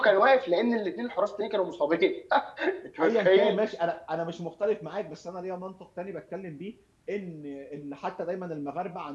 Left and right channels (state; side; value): identical; both; correlation 1.00